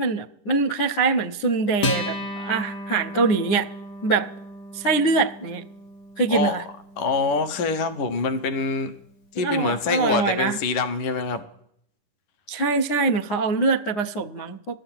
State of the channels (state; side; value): late; right; 9.7 ms